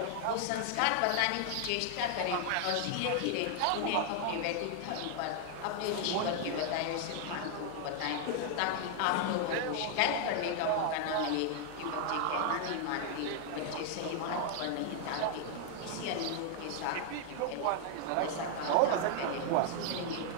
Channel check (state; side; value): different; both; correlation 0.00